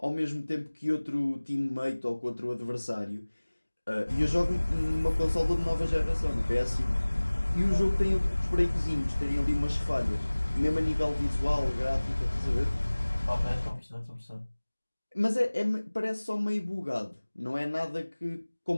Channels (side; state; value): both; inverted; correlation -1.00